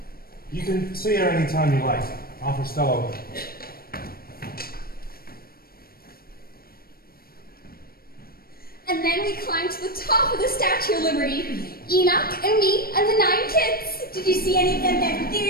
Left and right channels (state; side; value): late; right; 0.44 ms